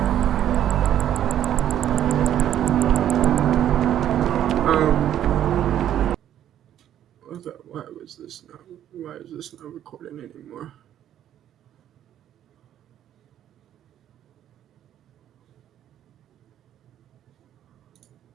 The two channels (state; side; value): quieter; left; 11.0 dB